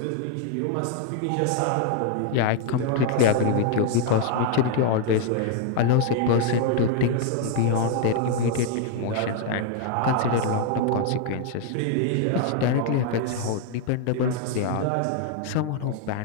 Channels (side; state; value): both; different; correlation 0.00